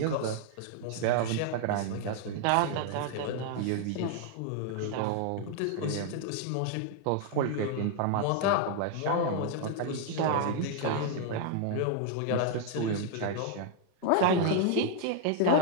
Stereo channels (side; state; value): both; different; correlation 0.00